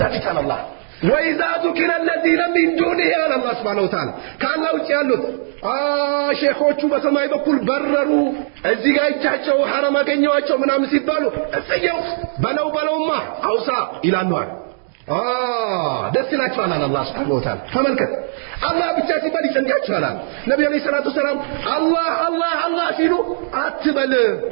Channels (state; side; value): silent; left; digital silence